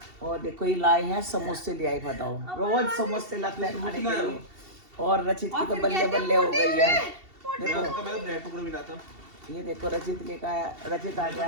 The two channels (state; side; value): late; left; 2.7 ms